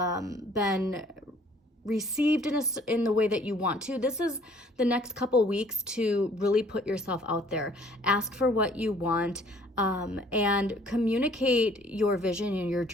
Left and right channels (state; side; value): normal; both; correlation 0.57